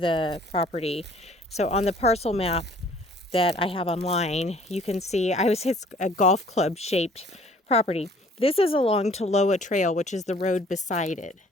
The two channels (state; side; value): normal; both; correlation 0.55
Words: property. So on the parcel map that I have online, you can see it's a golf club shaped property. This is along Toloa Trail, which is the road beside it.